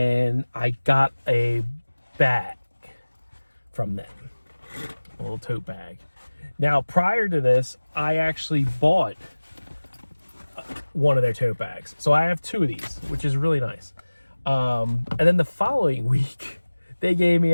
I got a bag from them, a little tote bag. Now, prior to this, I actually bought one of their tote bags. So I have 2 of these, which is really nice. And then the following week, they gave me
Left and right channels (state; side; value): inverted; both; correlation -1.00